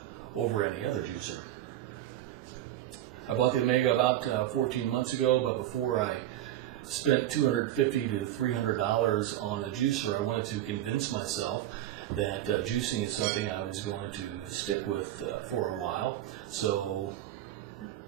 over any other juicer. I bought the Omega about 14 months ago, but before I spent $250 to $300 on a juicer, I wanted to convince myself that juicing is something I was going to stick with for a while. So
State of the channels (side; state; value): left; quieter; 13.0 dB